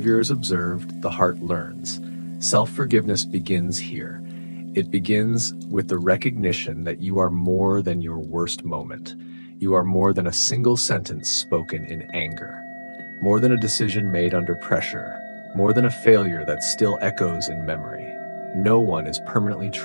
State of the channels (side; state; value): both; inverted; correlation -1.00